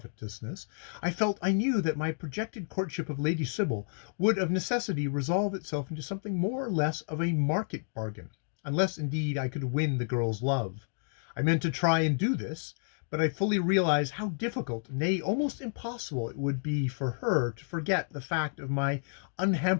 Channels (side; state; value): right; silent; digital silence